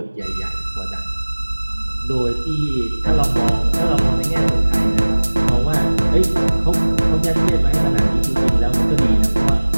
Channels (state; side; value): inverted; both; correlation -1.00